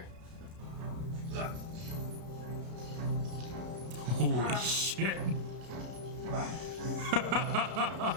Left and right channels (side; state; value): left; late; 33 ms